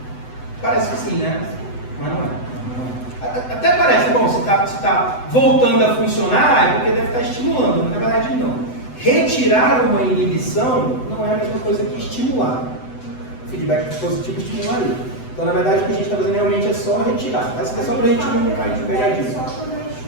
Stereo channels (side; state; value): right; late; 7.9 ms